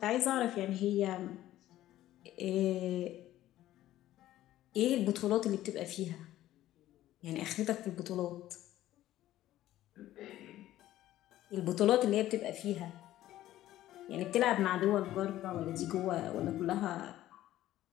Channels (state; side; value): quieter; right; 14.1 dB